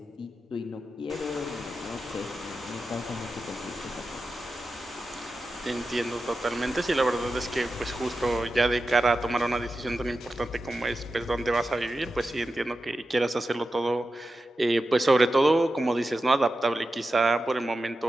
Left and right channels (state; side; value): normal; both; correlation 0.91